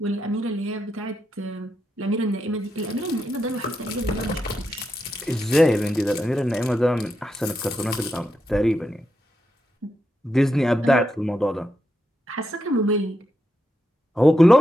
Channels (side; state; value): both; normal; correlation 0.85